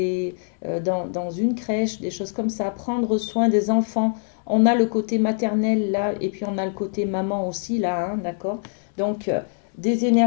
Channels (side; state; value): right; silent; 63 dB below the other